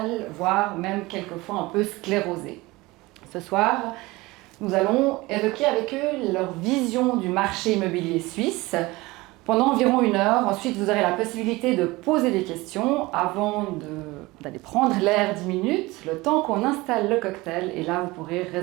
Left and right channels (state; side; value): quieter; left; 21.3 dB